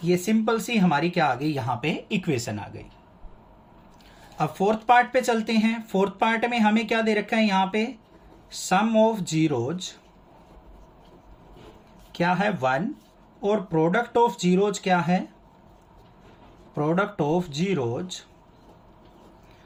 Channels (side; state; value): both; identical; correlation 1.00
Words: ये सिंपल सी हमारी क्या आ गई यहाँ पे इक्वेशन आ गई। अब फोर्थ पार्ट पे चलते हैं। फोर्थ पार्ट में हमें क्या दे रखा है यहाँ पे सम ऑफ जीरोज क्या है 1 और प्रोडक्ट ऑफ जीरोज क्या है, प्रोडक्ट ऑफ जीरोज